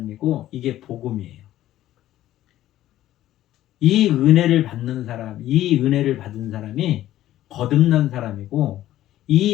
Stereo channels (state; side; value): quieter; right; 13.7 dB